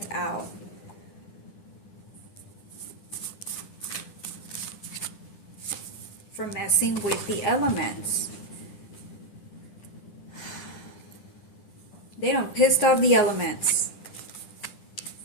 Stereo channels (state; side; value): late; right; 10 ms